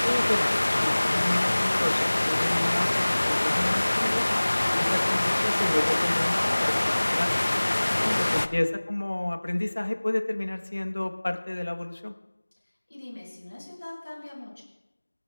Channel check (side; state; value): both; inverted; correlation -1.00